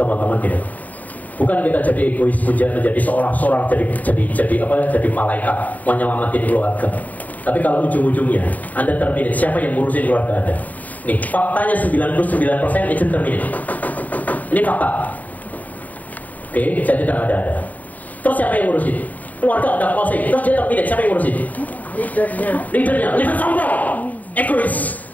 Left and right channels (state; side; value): late; right; 0.076 ms